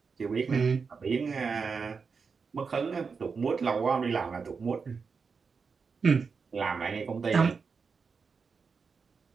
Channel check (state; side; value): quieter; left; 5.2 dB